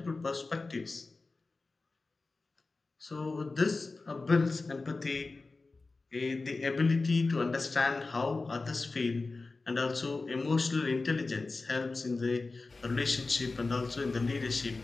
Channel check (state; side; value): quieter; right; 3.7 dB